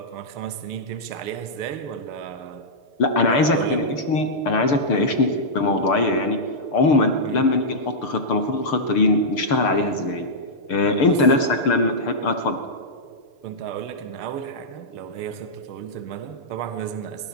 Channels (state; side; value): late; right; 6.7 ms